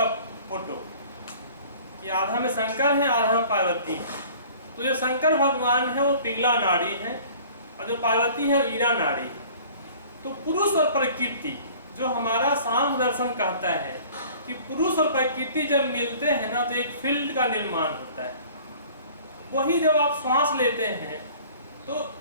फोटो, कि आधा में शंकर है, आधा में पार्वती है। तो जो शंकर भगवान है वो पिंगला नाड़ी है और जो पार्वती है वो ईडा नाड़ी है। तो पुरुष और प्रकृति, जो हमारा सांख्य दर्शन कहता है कि पुरुष और प्रकृति जब मिलते हैं ना, तो एक फील्ड का निर्माण होता है। वही जब आप श्वास लेते हैं, तो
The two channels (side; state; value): both; inverted; correlation -0.48